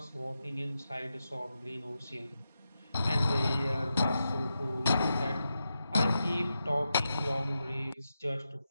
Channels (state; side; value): inverted; both; correlation -0.89